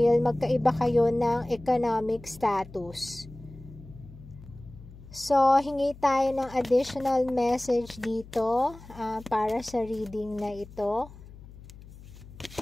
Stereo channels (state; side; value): noise; left; hum, 18 dB below the sound